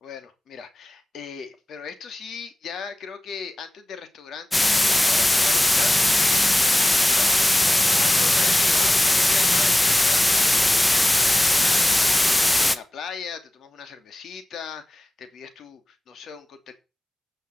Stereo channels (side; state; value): both; normal; correlation 0.96